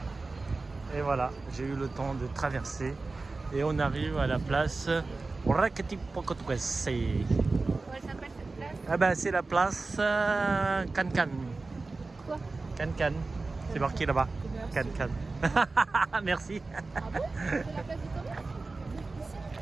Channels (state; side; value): quieter; left; 3.6 dB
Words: Et voilà, j'ai eu le temps de traverser et on arrive à la place Raketipokotuese. Comment elle s'appelle cette place? Ah ben c'est la place Can-Can. Quoi? Can-Can, c'est marqué là-bas. Can-Can. Merci. Ah bon? C'est la place du commerce?